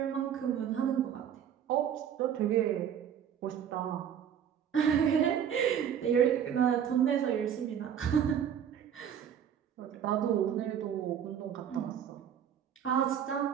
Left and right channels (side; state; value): left; quieter; 8.9 dB